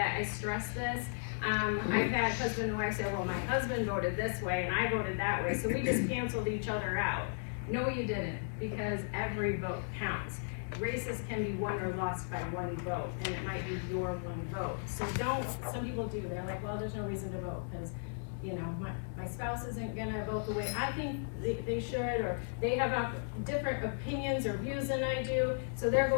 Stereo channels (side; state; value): right; silent; digital silence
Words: I stress this. I've had husband and wife say, well, my husband voted this way and I voted that way, so we just canceled each other out. No, you didn't, because every vote counts. Races can be won or lost by one vote, and it might be your one vote. So some people do, they're like, well, there's no reason to vote because, you know, my spouse isn't gonna vote the way I think they should, or they have different opinions or views than I do, so they're